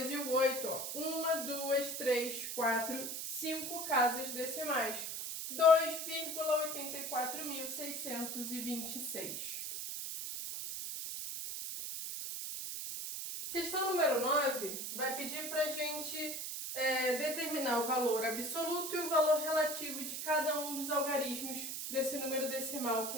e o 8. 1, 2, 3, 4, 5 casas decimais. 2,84.626. Questão número 9 vai pedir para a gente determinar o valor absoluto e o valor relativo de cada um dos algarismos desse número decimal que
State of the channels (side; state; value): right; noise; hiss, 4 dB below the sound